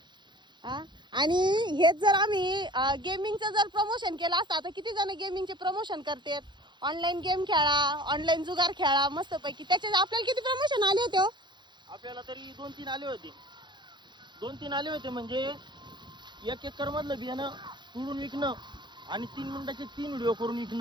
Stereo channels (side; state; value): left; late; 0.22 ms